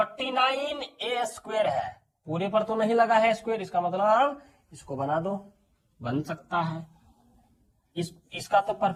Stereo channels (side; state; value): both; identical; correlation 1.00